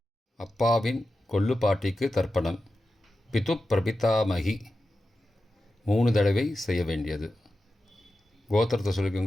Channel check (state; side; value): normal; both; correlation 0.92